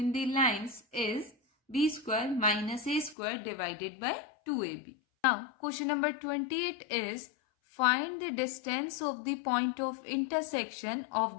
the lines is b square minus a square divided by 2ab. Now, question number 28 is, find the distance of the point of intersection of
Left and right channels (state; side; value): drops out; right; at 3.2 s